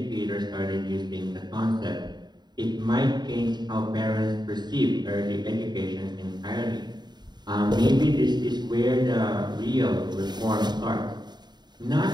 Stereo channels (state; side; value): late; left; 0.21 ms